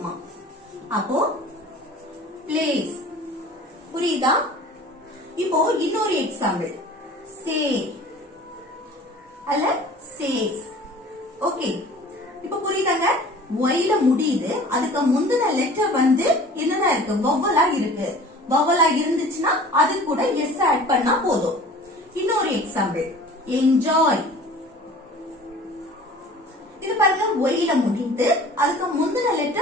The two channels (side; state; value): both; normal; correlation 0.45